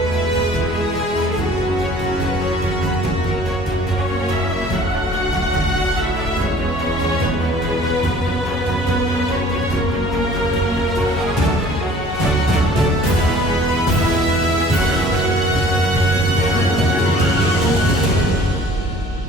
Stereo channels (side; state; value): both; normal; correlation 0.51